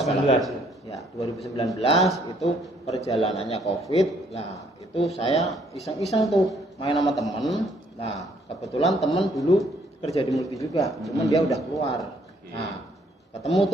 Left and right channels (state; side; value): normal; both; correlation 0.66